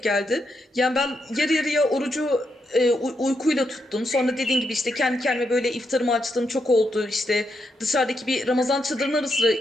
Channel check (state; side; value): normal; both; correlation 0.82